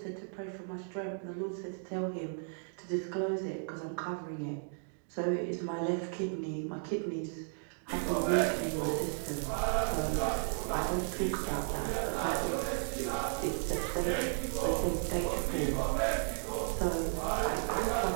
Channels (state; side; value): silent; left; digital silence